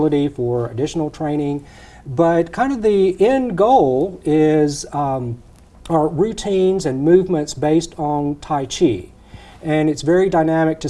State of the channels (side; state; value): both; identical; correlation 1.00